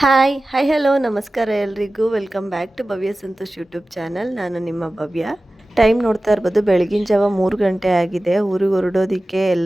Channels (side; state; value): both; normal; correlation 0.96